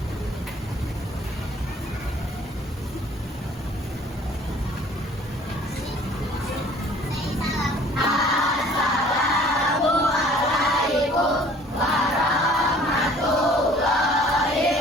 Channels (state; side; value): normal; both; correlation 0.53